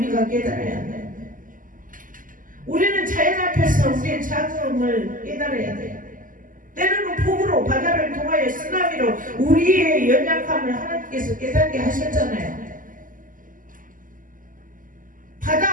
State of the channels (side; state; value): left; late; 0.39 ms